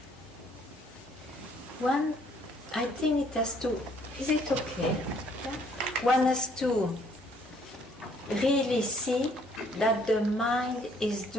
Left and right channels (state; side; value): noise; right; hum, 28 dB below the sound